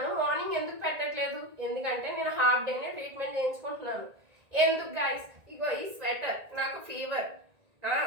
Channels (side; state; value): left; late; 1.9 ms